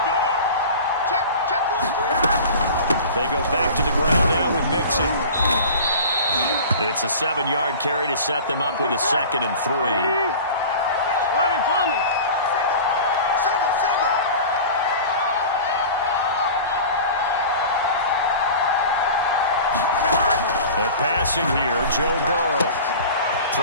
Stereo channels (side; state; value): both; inverted; correlation -0.37